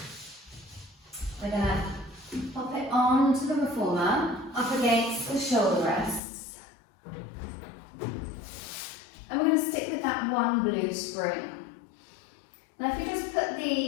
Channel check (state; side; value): drops out; right; at 6.2 s